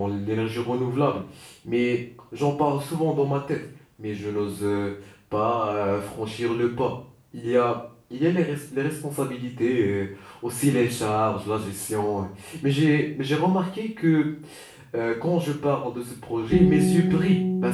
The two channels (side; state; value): both; identical; correlation 1.00